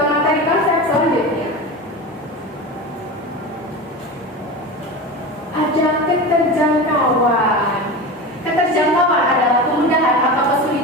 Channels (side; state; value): both; normal; correlation 0.27